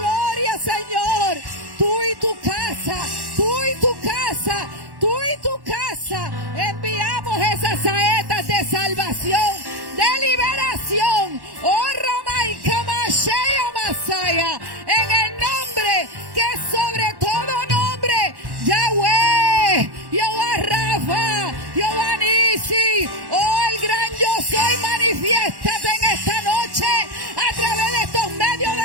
Señor. Tú y tu casa, tú y tu casa, tú y tu casa. Enviamos esas saetas de salvación, de liberación. Ramai Kamashaya Masaya. En el nombre que es sobre todo nombre, Yahweh, Jehová Rafa, Jehová Nisi, el gran yo soy, manifiéstate en esta noche a través de estos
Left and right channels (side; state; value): left; late; 1.1 ms